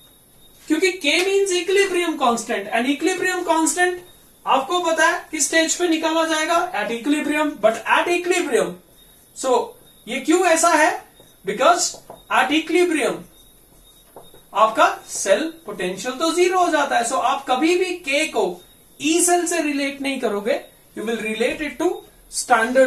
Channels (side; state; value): both; identical; correlation 1.00